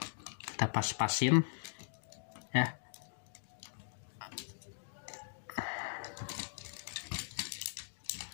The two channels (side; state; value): right; silent; digital silence